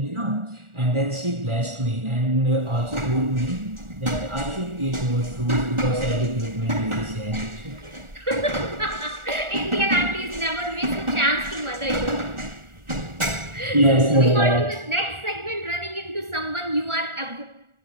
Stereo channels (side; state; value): left; late; 1.4 ms